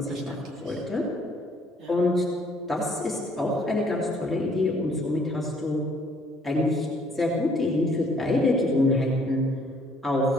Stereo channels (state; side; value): normal; both; correlation 0.63